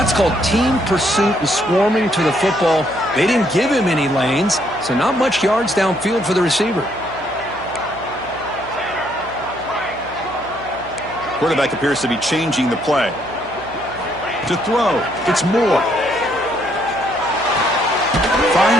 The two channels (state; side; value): noise; right; hum, 19 dB below the sound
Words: called team pursuit and swarming to the football. They didn't give him any lanes, so not much yards downfield for the receiver. Quarterback appears to be changing the play. To throw, it's Moore.